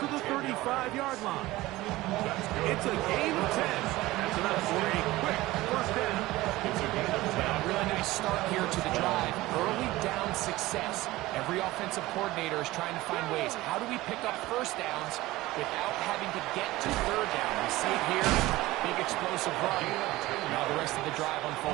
the 35-yard line. It's a gain of 10. That's enough for a quick first down. It's a gain of 10. A really nice start here to the drive. Early down success. Every offensive coordinator is trying to find ways. How do we pick up first downs without having to get to third down? We see it here. Big explosive run. Now the rest of the drive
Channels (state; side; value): quieter; left; 18.3 dB